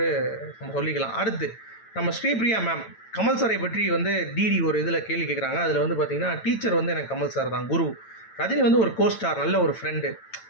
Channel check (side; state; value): right; late; 9.0 ms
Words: நம்ம சொல்லிக்கலாம். அடுத்து நம்ம ஸ்ரீபிரியா மேம் கமல் சாரை பற்றி வந்து டிடி ஒரு இதில் கேள்வி கேட்குறாங்க. அதில் வந்து பார்த்திங்கன்னா டீச்சர் வந்து எனக்கு கமல் சார் தான் குரு, ரஜினி வந்து ஒரு கோஸ்டார் நல்ல ஒரு ஃப்ரெண்டு